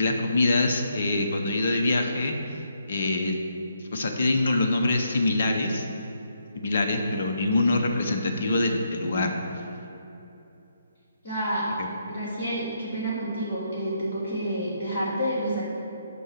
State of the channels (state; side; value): inverted; both; correlation -0.77